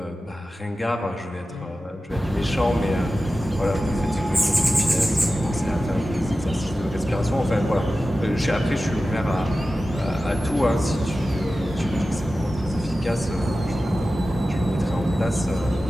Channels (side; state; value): both; normal; correlation 0.94